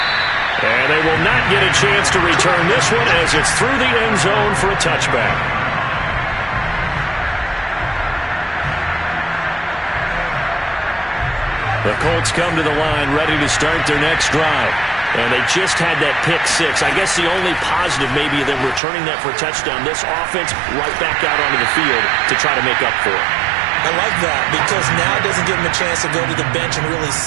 And they will not get a chance to return this one as it's through the end zone for a touchback. The Colts come to the line ready to start their next drive. And they just had that pick six. I guess the only positive maybe of them returning that for a touchdown. This offense right back out onto the field to try to make up for it. I like that because now it doesn't give them a chance to go to the bench and really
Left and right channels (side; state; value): left; drops out; at 18.8 s